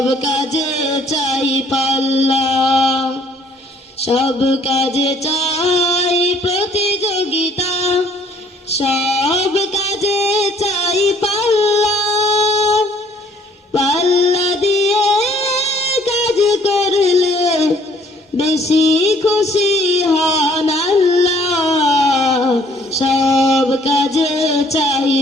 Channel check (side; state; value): both; normal; correlation 0.60